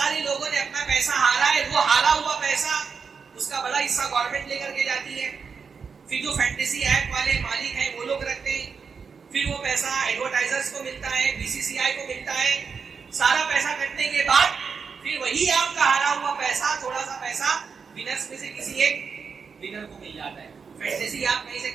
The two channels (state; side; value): quieter; left; 5.7 dB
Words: لوگوں نے اپنا پیسہ ہارا ہے. وہ ہارا ہوا پیسہ اس کا بڑا حصہ گورنمنٹ لے کر کے جاتی ہے. پھر جو فینٹیسی ایپ والے مالک ہیں وہ لوگ رکھتے ہیں. پھر وہ پیسہ ایڈورٹائزرز کو ملتا ہے، BCCI کو ملتا ہے. سارا پیسہ کٹنے کے بعد پھر وہی آپ کا ہارا ہوا پیسہ، تھوڑا سا پیسہ ونرز میں سے کسی ایک ونر کو مل جاتا ہے. فینٹیسی آپ کہیں سے